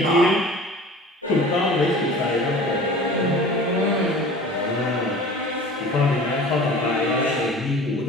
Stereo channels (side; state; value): both; normal; correlation 0.41